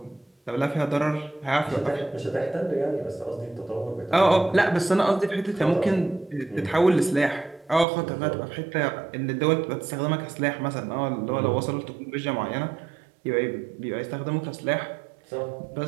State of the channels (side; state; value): left; drops out; at 7.9 s